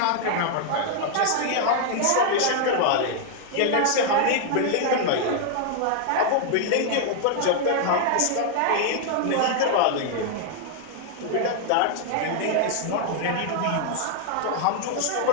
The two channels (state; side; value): different; both; correlation 0.00